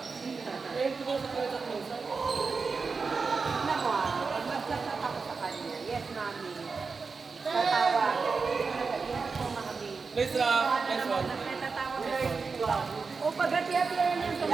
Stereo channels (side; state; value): left; quieter; 4.7 dB